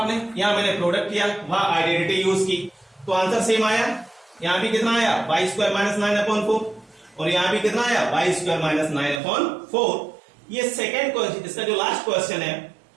यहां मैंने प्रोडक्ट किया, वहां आइडेंटिटी यूज की, तो आंसर सेम आया। यहां भी कितना आया? वाई स्क्वायर माइनस 9/4 और यहां भी कितना आया? Y square minus 9/4। ये सेकेंड क्वेश्चन, इसका जो लास्ट क्वेश्चन है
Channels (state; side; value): drops out; left; at 9.2 s